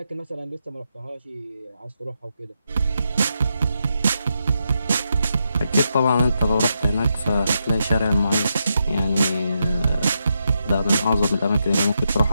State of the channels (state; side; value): inverted; both; correlation -0.83